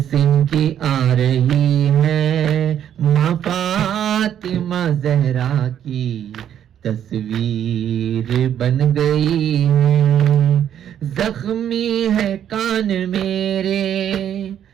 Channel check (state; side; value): quieter; left; 9.9 dB